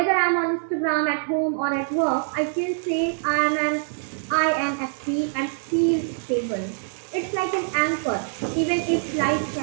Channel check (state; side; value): silent; left; digital silence